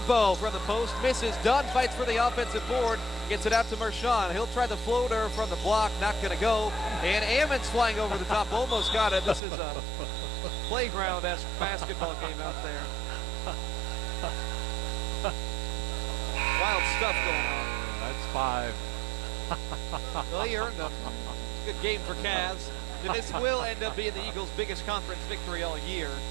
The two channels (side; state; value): left; drops out; at 9.4 s